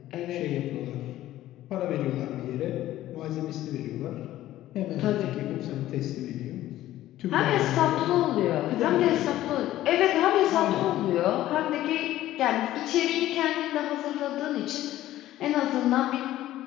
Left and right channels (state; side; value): quieter; right; 14.3 dB